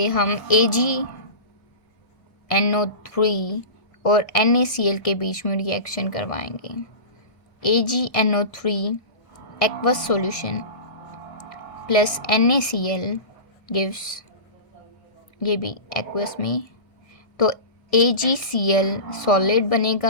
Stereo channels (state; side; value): late; right; 2.0 ms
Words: हम AgNO3 और NaCl के बीच में रिएक्शन करवाएंगे. AgNO3 aqueous solution plus NaCl gives, ये भी एक्वस में, तो AgCl सॉलिड